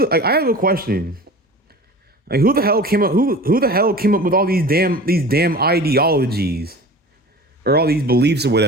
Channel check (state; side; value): normal; both; correlation 0.38